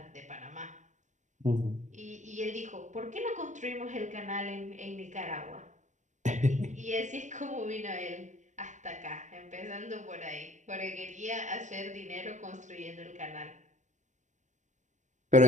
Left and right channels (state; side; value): late; left; 0.35 ms